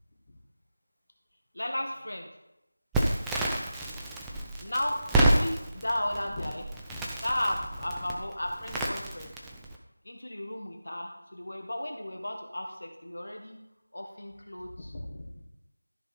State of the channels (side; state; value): both; inverted; correlation -0.87